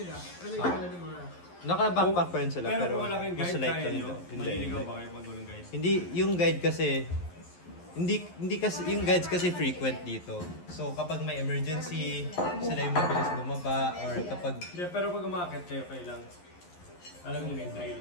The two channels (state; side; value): late; right; 11 ms